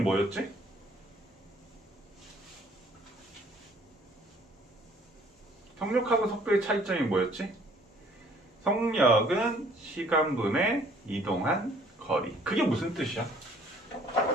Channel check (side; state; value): both; normal; correlation 0.58